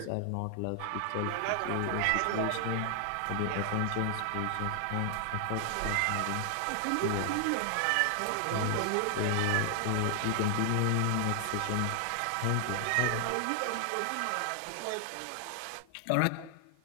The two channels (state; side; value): different; both; correlation 0.00